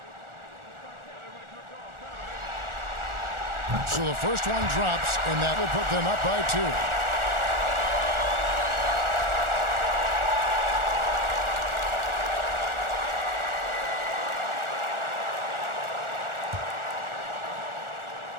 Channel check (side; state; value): left; late; 1.4 ms